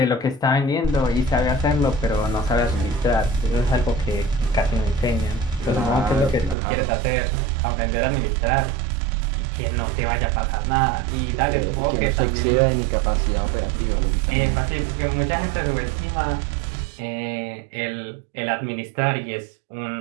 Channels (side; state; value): left; drops out; at 6.6 s